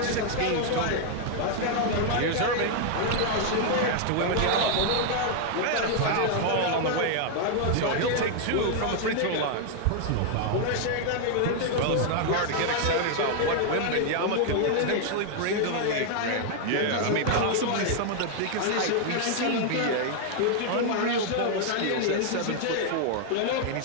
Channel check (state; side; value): different; both; correlation 0.00